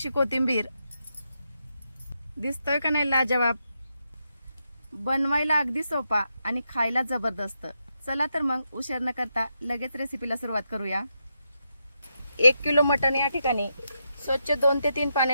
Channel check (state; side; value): inverted; both; correlation -0.84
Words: कोथिंबीर। दिसतोय का नाही लाजवाब? बनवायला अगदी सोपा आणि खायला जबरदस्त। चला तर मग उशीर न करता लगेच रेसिपीला सुरुवात करूया। 1 किलो मटण या ठिकाणी स्वच्छ 2 ते 3